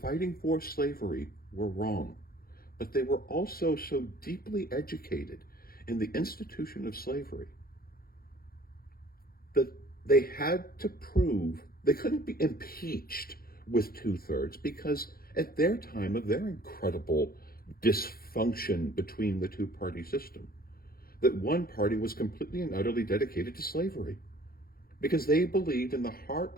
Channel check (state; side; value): late; right; 0.43 ms